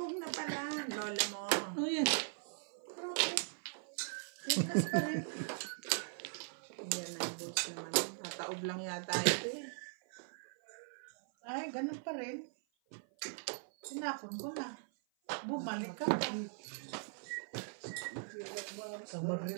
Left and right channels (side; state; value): left; silent; 51 dB below the other